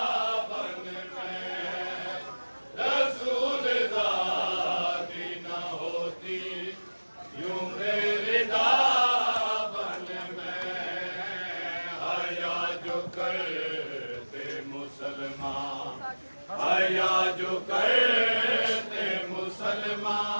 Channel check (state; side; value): inverted; both; correlation -1.00